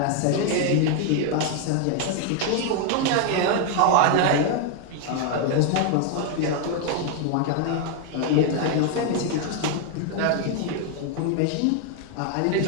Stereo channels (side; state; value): both; different; correlation 0.01